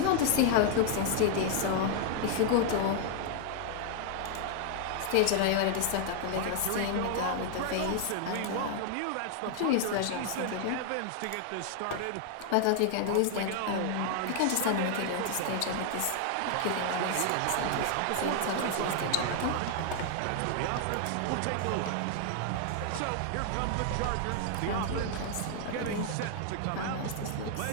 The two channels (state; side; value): different; both; correlation 0.00